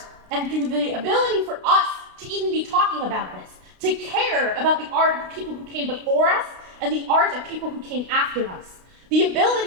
and through the ability for us to even be talking about this, to care about the art of people who came before us and the art of people who came after us. The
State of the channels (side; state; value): left; late; 32 ms